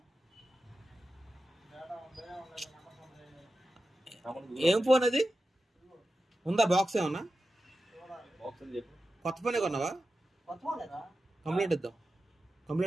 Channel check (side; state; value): both; normal; correlation 0.92